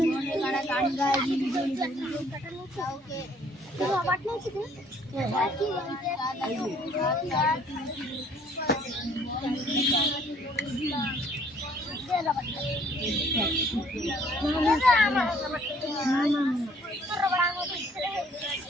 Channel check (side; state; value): both; normal; correlation 0.60